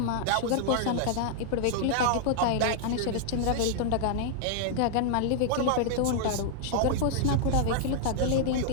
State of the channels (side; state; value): both; different; correlation -0.01